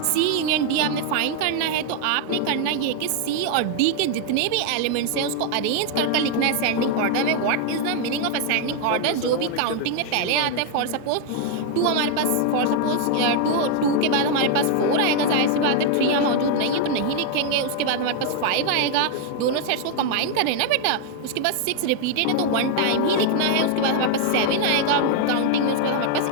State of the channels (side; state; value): both; different; correlation 0.00